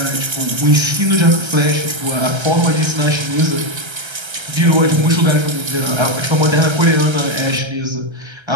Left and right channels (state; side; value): late; left; 1.3 ms